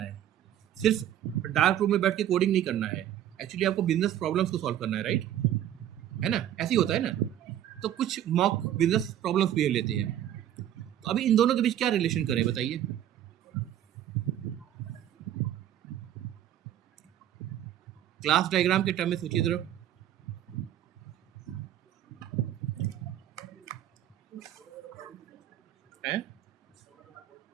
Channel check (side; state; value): left; quieter; 11.6 dB